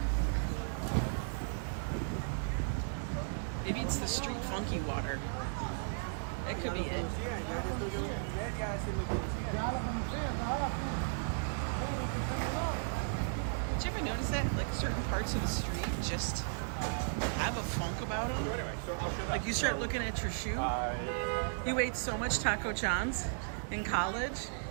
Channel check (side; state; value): left; silent; digital silence